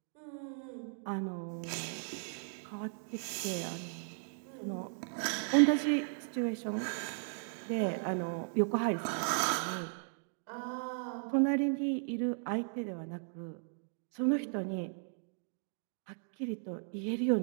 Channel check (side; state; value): left; silent; digital silence